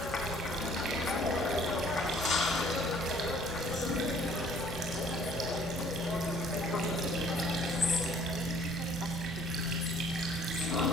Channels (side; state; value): both; normal; correlation 0.57